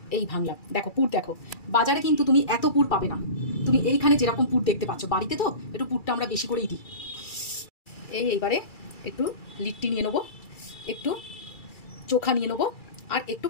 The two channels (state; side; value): late; right; 2.3 ms